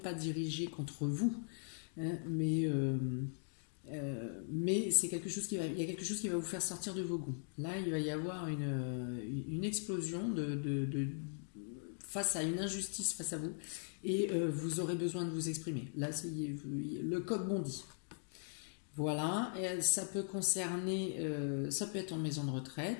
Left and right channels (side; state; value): right; silent; digital silence